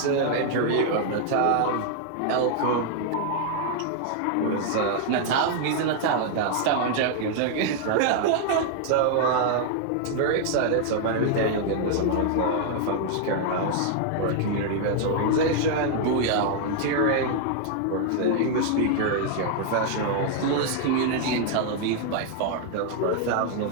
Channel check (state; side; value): different; both; correlation 0.00